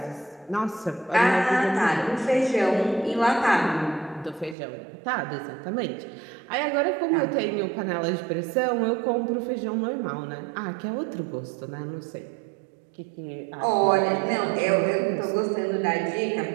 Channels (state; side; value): drops out; left; at 4.5 s